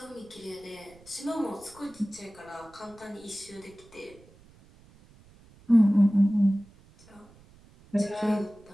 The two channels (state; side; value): noise; right; rumble, 26 dB below the sound